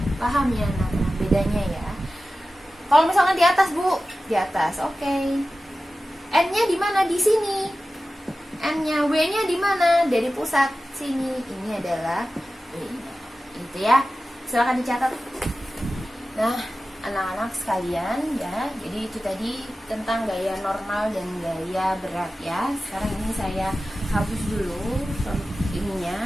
Paham ya anak-anak bedanya ya? Kalau misalkan di atas, Bu, di atas. Oke. N-nya di mana? Di sini. N-nya, W-nya di mana? Dari pusat sini. Ini adalah W-nya. Itu ya. Silakan dicatat. Nah, anak-anak sekalian ya, jadi itu tadi tentang gaya normal dan gaya berat ya. Sekarang ini saya hapus dulu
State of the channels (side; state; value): both; normal; correlation 0.95